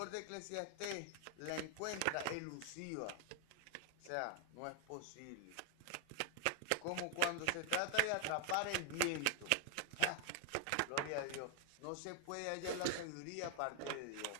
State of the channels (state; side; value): different; both; correlation 0.00